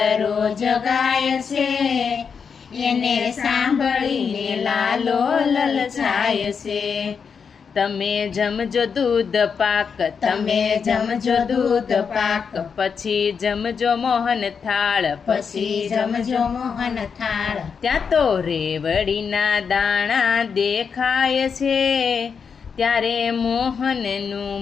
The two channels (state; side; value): quieter; right; 6.2 dB